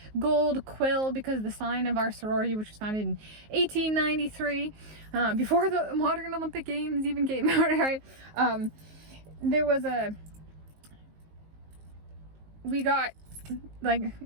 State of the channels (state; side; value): late; left; 19 ms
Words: gold quill, because the sign of our sorority, which was founded in 1893, before the modern Olympic Games even came out, right? There was we got like,